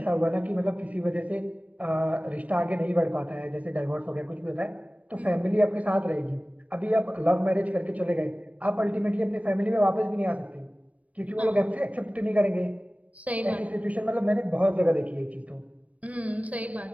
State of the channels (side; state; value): left; late; 0.069 ms